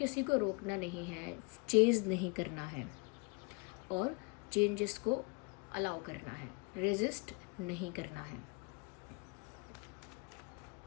को रोकना नहीं है, चेज़ नहीं करना है और चेंजेस को अलाउ करना है, रेजिस्ट नहीं करना है।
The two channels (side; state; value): right; quieter; 30.6 dB